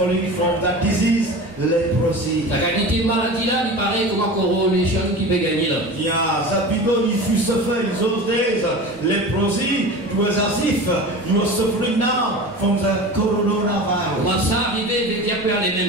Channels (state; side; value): normal; both; correlation 0.33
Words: from that disease, leprosy. La qualité de maladie là, il paraît comme un coronation qui peut gagner là. Yeah, that because if you suffer in those days, leprosy, it was as if you are suffering now from the coronavirus. Comment ça arrivé dès qu'il y a plus les